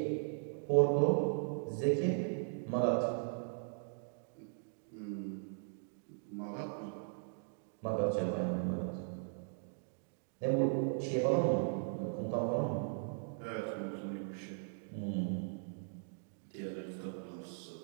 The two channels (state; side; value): silent; left; digital silence